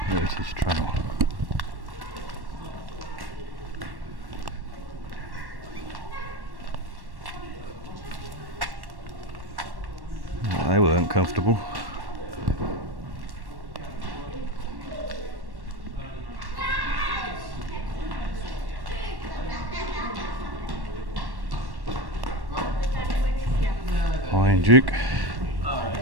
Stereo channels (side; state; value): left; late; 1.1 ms